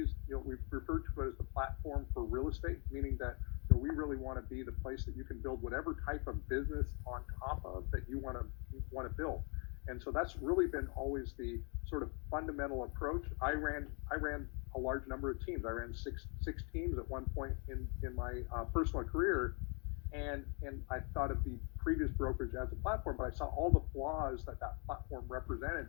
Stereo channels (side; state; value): right; quieter; 36.5 dB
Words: we refer to it as the platform for real estate, meaning that we really want to be the place that you can build whatever type of business on top of that you want to build. And so that's really been always the sort of fundamental approach. I ran a large number of teams. I ran six teams at one point in my personal career, and I thought of the previous brokerage as a platform, but I saw all the flaws that platform represented